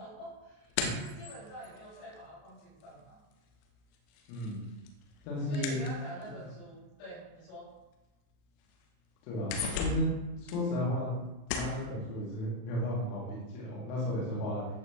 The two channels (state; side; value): late; right; 35 ms